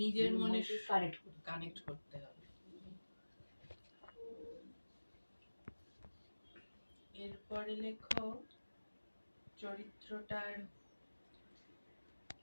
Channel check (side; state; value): both; inverted; correlation -1.00